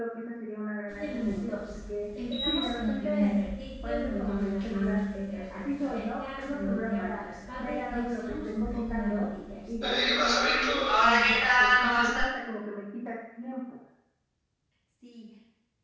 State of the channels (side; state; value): both; identical; correlation 1.00